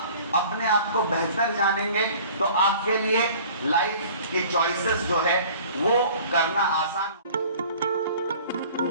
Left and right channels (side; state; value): both; inverted; correlation -0.48